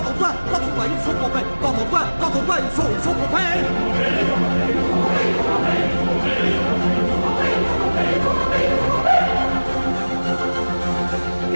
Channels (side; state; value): both; inverted; correlation -1.00